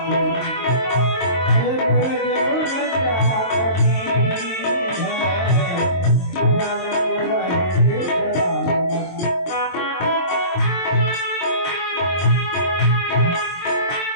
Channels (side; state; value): right; late; 23 ms